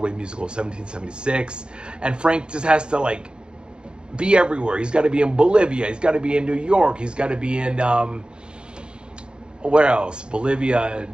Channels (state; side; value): late; left; 0.052 ms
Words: musical of 1776, and Frank just has to like be everywhere. He's got to be in Bolivia. He's got to be in New York. He's got to be in where else? Bolivia,